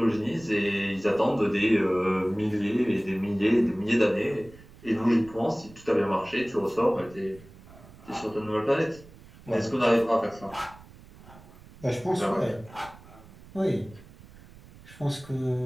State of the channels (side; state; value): right; noise; rumble, 21 dB below the sound